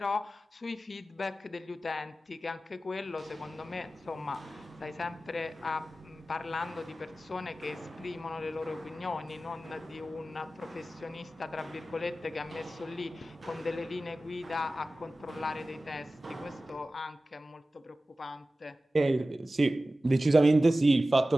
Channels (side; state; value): both; normal; correlation 0.95